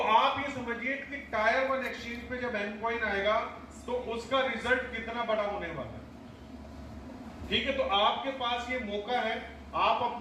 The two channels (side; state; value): both; identical; correlation 1.00